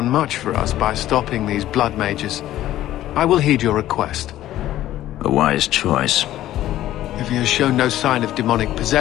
much for us by stopping these blood mages. I will heed your request. A wise choice. If he has shown no sign of demonic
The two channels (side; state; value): right; quieter; 13.7 dB